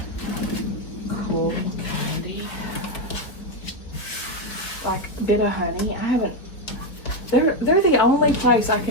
cool candy. Like Bit of Honey. I haven't. They're the only place I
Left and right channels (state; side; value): late; right; 4.5 ms